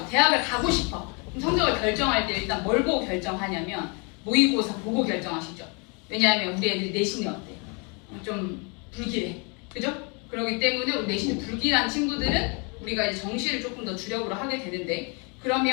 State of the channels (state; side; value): quieter; right; 33.4 dB